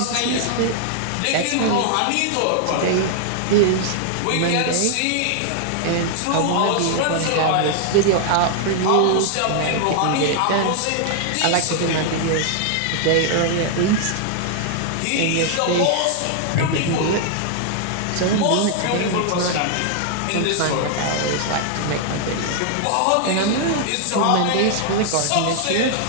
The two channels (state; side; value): different; both; correlation 0.00